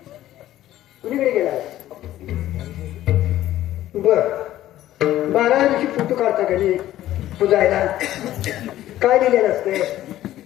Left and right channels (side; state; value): right; quieter; 13.8 dB